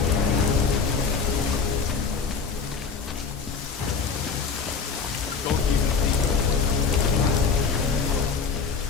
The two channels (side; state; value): right; quieter; 5.3 dB